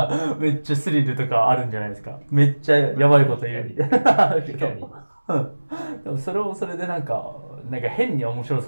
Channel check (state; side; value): inverted; both; correlation -1.00